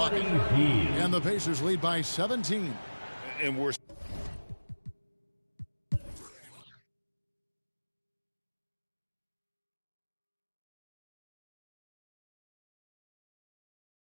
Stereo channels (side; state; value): both; inverted; correlation -1.00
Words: And the Pacers lead by 17. And we're